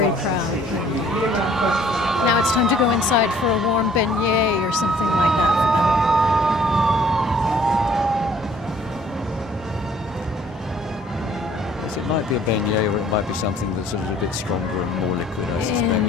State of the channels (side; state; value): both; normal; correlation 0.57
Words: proud. Now it's time to go inside for a warm beignet or something like that for them. choice. It might be a beignet, or it might be something that's a little bit stronger and more liquid, I suspect.